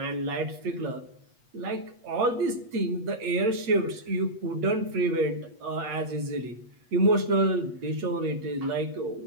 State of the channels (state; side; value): late; left; 8.2 ms